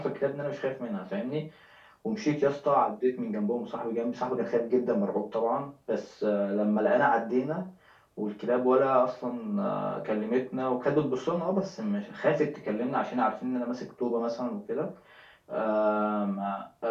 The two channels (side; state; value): both; identical; correlation 1.00